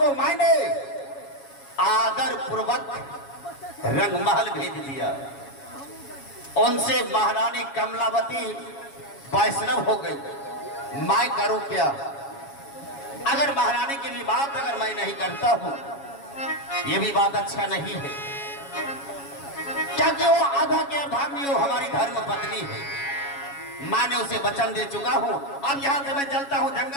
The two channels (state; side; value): late; right; 7.2 ms